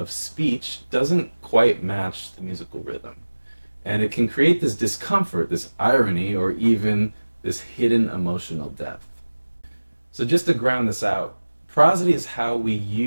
speech doesn't quite match the musical rhythm. And it can create this discomfort, this irony, or even this hidden emotional depth. So just to ground this out, prosody is how we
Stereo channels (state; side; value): inverted; both; correlation -1.00